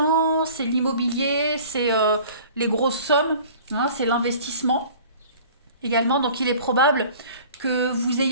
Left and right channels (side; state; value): both; inverted; correlation -0.47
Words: c'est l'immobilier, c'est les grosses sommes, hein, c'est l'investissement également. Donc, il est probable que vous